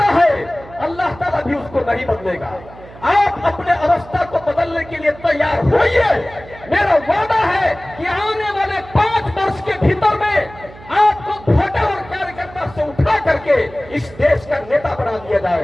है, अल्लाह ताला भी उसको नहीं बदलेगा। आप अपने अवस्था को बदलने के लिए तैयार होइए। मेरा वादा है कि आने वाले 5 वर्ष के भीतर में आपको वोटर और कार्यकर्ता से उठा करके इस देश का नेता बना दिया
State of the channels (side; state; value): right; noise; hum, 19 dB below the sound